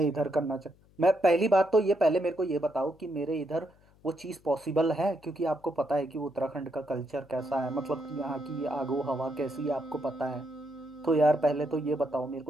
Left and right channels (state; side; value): noise; left; hum, 29 dB below the sound